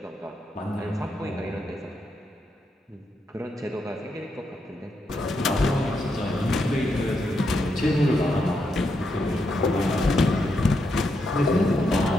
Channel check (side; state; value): both; normal; correlation 0.81